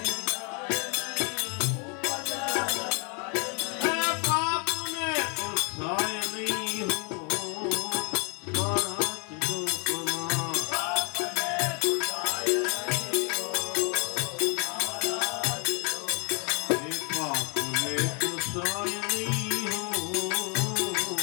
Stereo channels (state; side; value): quieter; right; 36.1 dB